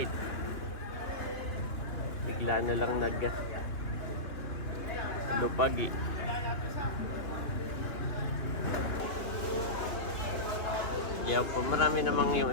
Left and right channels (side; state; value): right; late; 2.9 ms